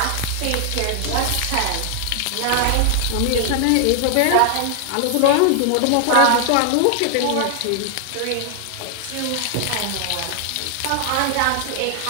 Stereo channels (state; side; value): different; both; correlation 0.00